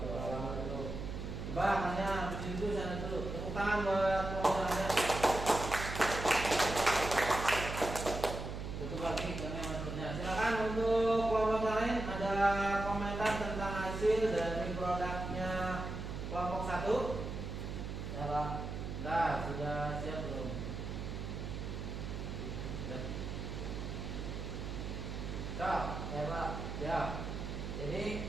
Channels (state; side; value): noise; right; hum, 6 dB below the sound